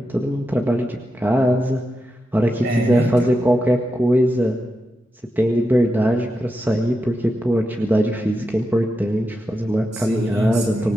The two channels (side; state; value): both; normal; correlation 0.88